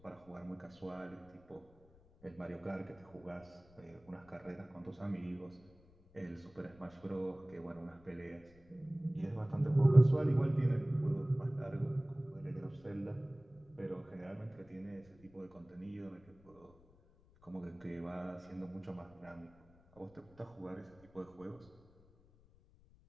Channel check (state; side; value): noise; left; rumble, 26 dB below the sound